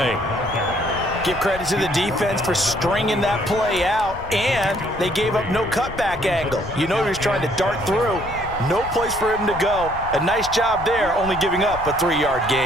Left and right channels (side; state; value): left; noise; rumble, 14 dB below the sound